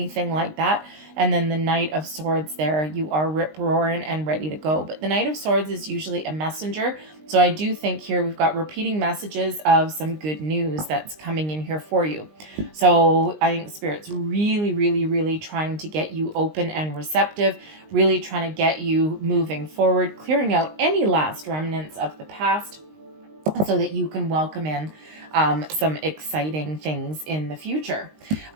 like that. And then the Knight of Swords there, you are rip-roaring and ready to go. But the Knight of Swords is usually a messenger. So I do think here we've got repeating messages of some good news that's coming in here for you. So I think Spirit's really, really, really trying to get you open and receptive, really trying to get you moving forward, clearing out any last remnants of the past so that you can welcome in some exciting things in the future.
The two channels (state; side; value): late; left; 19 ms